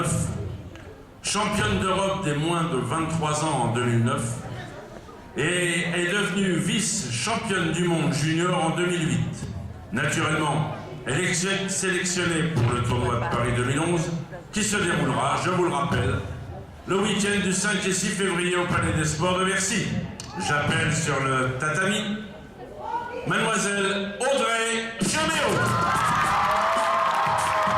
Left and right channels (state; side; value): identical; both; correlation 1.00